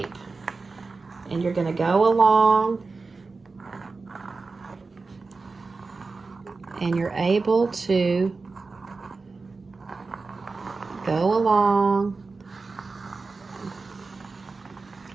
And you're going to go along and you're able to go along.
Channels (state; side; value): quieter; left; 4.1 dB